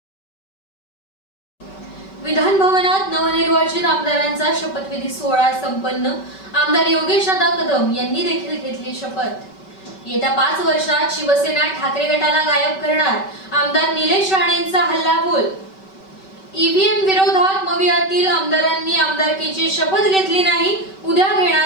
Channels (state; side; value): late; right; 5.2 ms